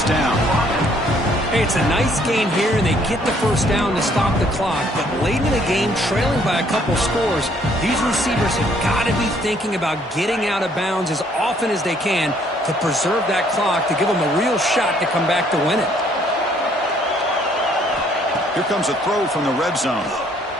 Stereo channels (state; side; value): normal; both; correlation 0.64